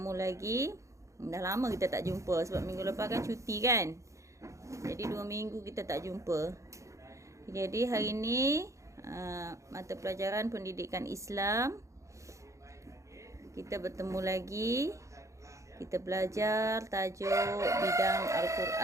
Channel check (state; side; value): late; left; 0.15 ms